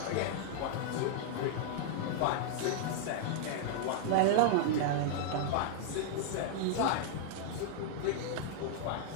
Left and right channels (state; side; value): different; both; correlation -0.01